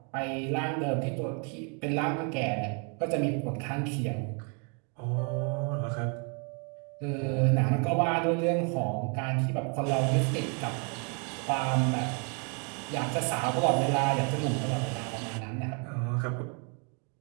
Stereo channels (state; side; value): quieter; left; 37.5 dB